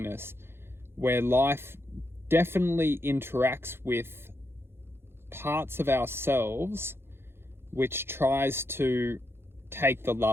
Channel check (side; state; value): left; late; 0.11 ms